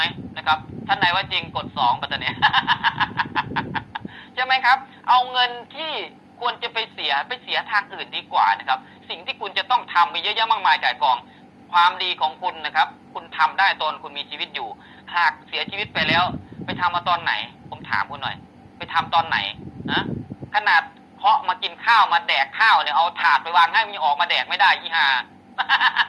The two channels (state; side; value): identical; both; correlation 1.00